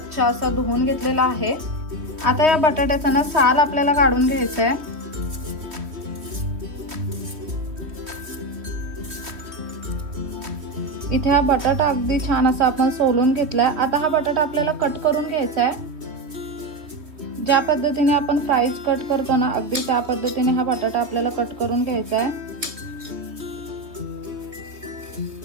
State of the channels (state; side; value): late; left; 3.1 ms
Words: असा धुवून घेतलेला आहे। आता या बटाट्याचा ना साल आपल्याला काढून घ्यायचा आहे। इथे हा बटाटा अगदी छान असा आपण सोलून घेतलाय। आता हा बटाटा आपल्याला कट करून घ्यायचा आहे। ज्या पद्धतीने आपण फ्राईज कट करतो ना, अगदी त्या पद्धतीने हा बटाटा आपल्याला कट करून घ्यायचा आहे।